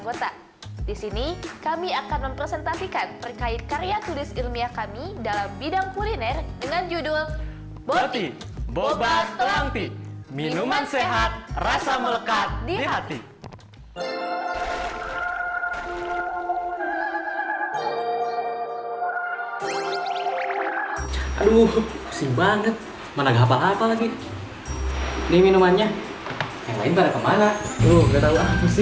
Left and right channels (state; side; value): identical; both; correlation 1.00